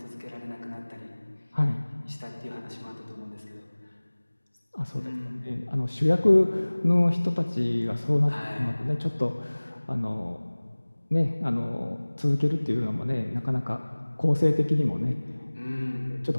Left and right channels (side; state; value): both; inverted; correlation -1.00